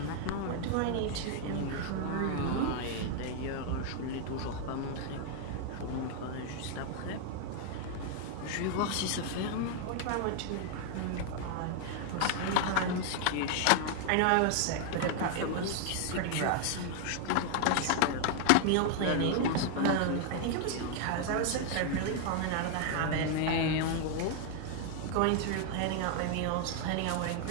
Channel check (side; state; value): both; different; correlation 0.00